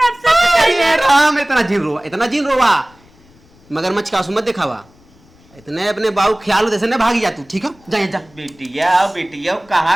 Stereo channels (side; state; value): left; noise; rumble, 29 dB below the sound